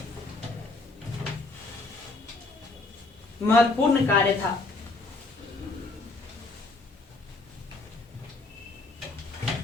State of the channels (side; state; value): right; quieter; 3.3 dB